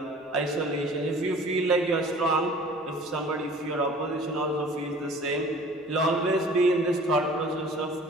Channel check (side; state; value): both; normal; correlation 0.47